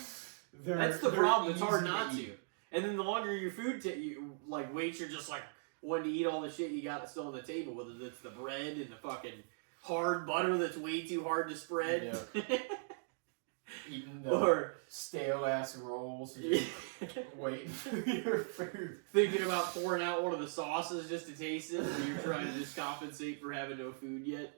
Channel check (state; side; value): silent; left; digital silence